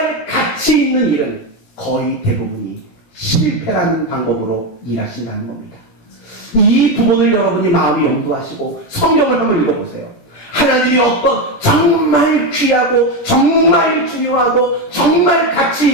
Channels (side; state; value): right; late; 17 ms